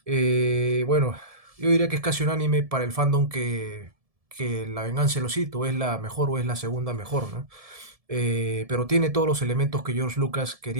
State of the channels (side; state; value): left; late; 1.7 ms